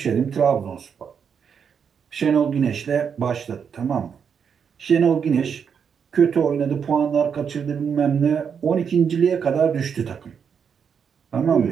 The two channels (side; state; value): left; quieter; 7.0 dB